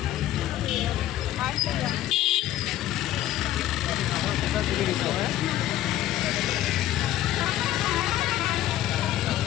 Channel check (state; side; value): quieter; right; 13.6 dB